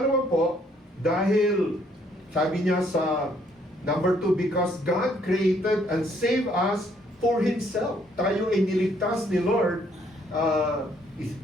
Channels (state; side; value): normal; both; correlation 0.67